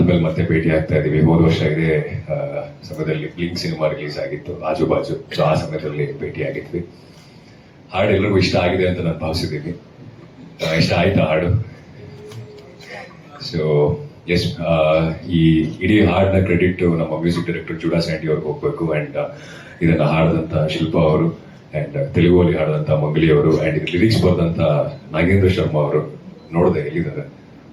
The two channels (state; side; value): identical; both; correlation 1.00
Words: ಮತ್ತೆ ಭೇಟಿ ಆಗ್ತಾ ಇದೀವಿ. ಹೋದ ವರ್ಷ ಇದೇ ಸಮಯದಲ್ಲಿ ಬ್ಲಿಂಕ್ ಸಿನಿಮಾ ರಿಲೀಸ್ ಆಗಿತ್ತು, ಆಜು ಬಾಜು. ಸೊ ಆ ಸಮಯದಲ್ಲಿ ಭೇಟಿ ಆಗಿದ್ವಿ. ಹಾಡು ಎಲ್ಲರಿಗೂ ಇಷ್ಟ ಆಗಿದೆ ಅಂತ ನಾನು ಭಾವಿಸಿದ್ದೀನಿ. ಇಷ್ಟ ಆಯ್ತಾ ಹಾಡು? ಸೊ ಎಸ್, ಈ ಇಡೀ ಹಾಡಿನ ಕ್ರೆಡಿಟ್ ನಮ್ಮ ಮ್ಯೂಸಿಕ್ ಡೈರೆಕ್ಟರ್ ಜುಡಾ ಸ್ಯಾಂಡಿ ಅವ್ರಿಗೆ ಹೋಗ್ಬೇಕು. ಅಂಡ್ ಇದನ್ನ ಹಾಡಿದಂತ ಶಿಲ್ಪಾ ಅವರು, ಅಂಡ್ ತೆಲುಗುವಲ್ಲಿ ಹಾಡಿದಂತ ಮಂಗಲಿ ಅವರು, ಅಂಡ್ ಇದು ಲಿರಿಕ್ಸ್ ಬರೆದಂತ ನಾಗೇಂದ್ರ ಶರ್ಮಾ ಅವರು. ನೋಡಿದೆ, ಎಲ್ಲಿದ್ದಾರೆ?